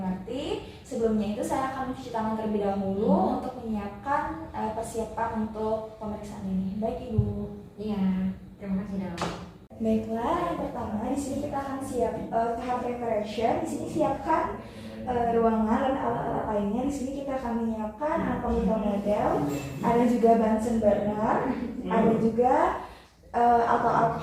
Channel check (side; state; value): both; identical; correlation 1.00